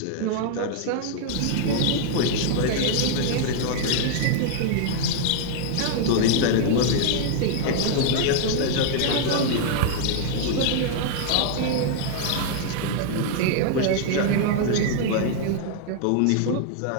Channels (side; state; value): both; different; correlation 0.00